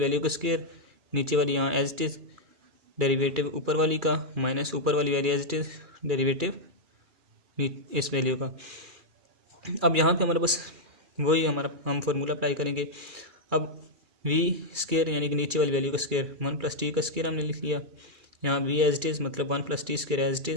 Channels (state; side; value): late; left; 2.4 ms